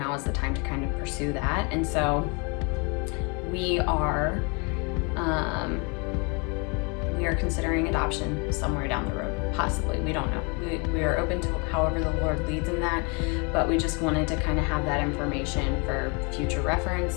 is the time to kind of pursue that. And so we we are considering adoption somewhere down the road, possibly. We don't know. We are open to however the Lord leads in that, but we just wanted to kind of have that information for future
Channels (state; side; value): quieter; right; 32.5 dB